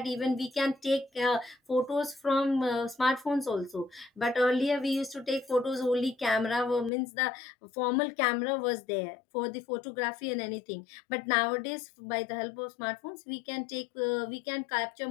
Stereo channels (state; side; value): drops out; right; at 6.9 s